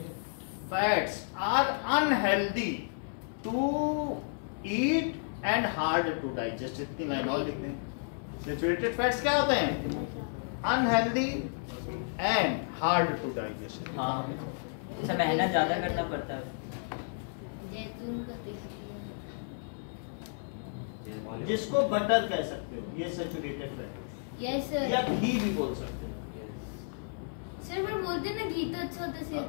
fats are unhealthy to eat and hard to digest. इतनी लाइन और लिख दें, सैचुरेटेड फैट्स क्या होते हैं? Unhealthy and hard to digest. इसे मेहनत ज्यादा करना पड़ता है। जिसको बटर कह सकते हो, ये सैचुरेटेड फैट, यस सर, या घी भी बोल सकते हो। सर पर बोलते हैं ना घी तो अच्छा होता है,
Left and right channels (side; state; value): right; silent; digital silence